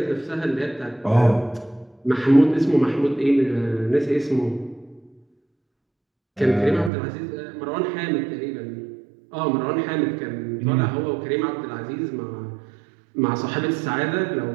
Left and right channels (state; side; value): drops out; left; at 6.9 s